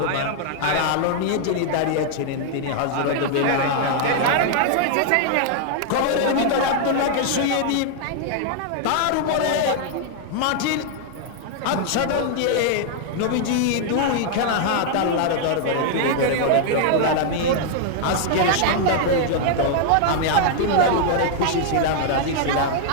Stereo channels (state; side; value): different; both; correlation 0.00